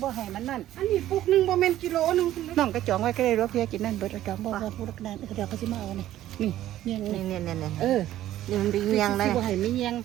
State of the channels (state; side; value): quieter; left; 13.3 dB